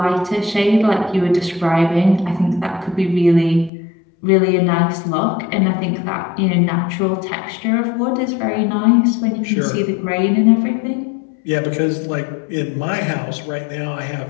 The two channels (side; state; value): right; drops out; at 3.7 s